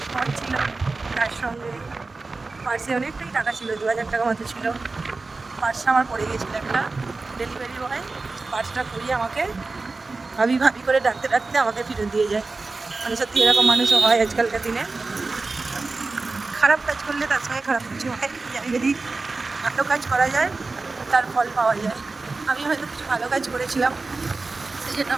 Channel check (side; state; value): left; quieter; 3.7 dB